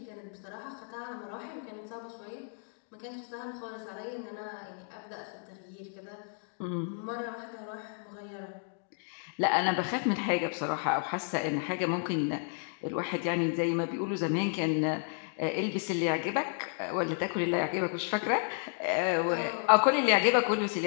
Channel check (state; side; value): silent; right; 56 dB below the other